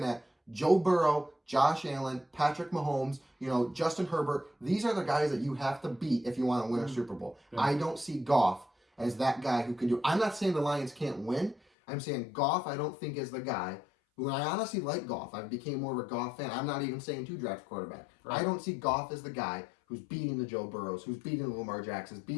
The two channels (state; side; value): drops out; right; at 11.6 s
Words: at Joe Burrow, Josh Allen, Patrick Mahomes, you know, Justin Herbert. These are the guys that you have to beat if you want to win a Super Bowl. Yeah. I don't see Goff as that guy who can do. I'm not saying the Lions can't win. I'm saying Goff, I don't think is the guy who I honestly like Goff. I became more of a Goff fan. I'm not even saying 2 draft quarterback. Right. I don't see Goff as the guy who's beating the Joe Burrows, who's beating the Lamar Jacksons,